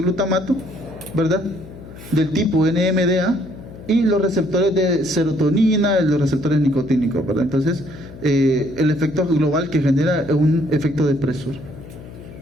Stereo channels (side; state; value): left; noise; hum, 16 dB below the sound